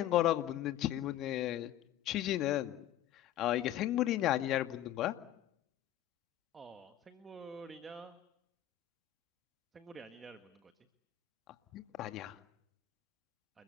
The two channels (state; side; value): quieter; right; 12.8 dB